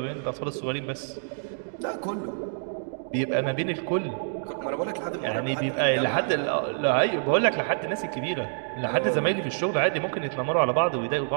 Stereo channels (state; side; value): silent; left; digital silence